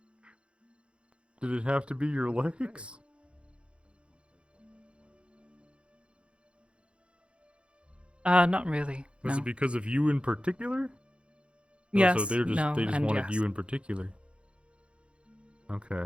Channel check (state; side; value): late; left; 0.058 ms